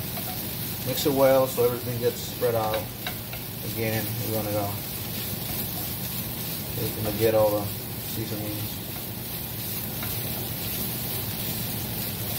mix it well so everything gets spread out. Again, we're gonna get all seasonings.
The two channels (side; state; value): both; identical; correlation 1.00